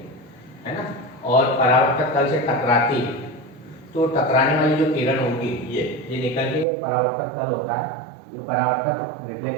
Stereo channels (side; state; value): left; drops out; at 6.7 s